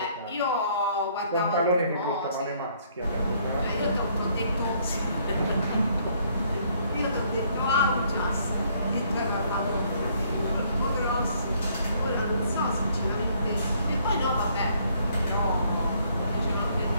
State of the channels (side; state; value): both; inverted; correlation -0.65